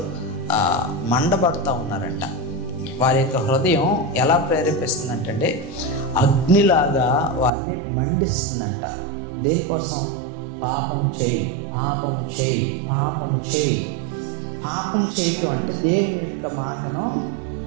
మండబడుతూ ఉన్నారంట. వారి యొక్క హృదయం ఎలా ప్రేరేపిస్తుందంటే అగ్నిలాగా వారిని మండిస్తుందంట. దేనికోసం? పాపము చేయి, పాపము చేయి, పాపము చేయి. పాపము చేయటం అంటే దేవుని యొక్క మాటను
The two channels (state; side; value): drops out; left; at 7.5 s